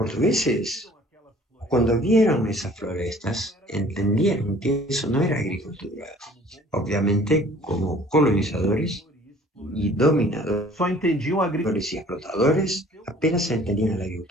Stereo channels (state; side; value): normal; both; correlation 0.52